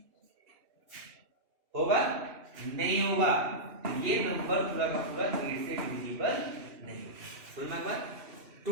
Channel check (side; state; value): left; late; 2.9 ms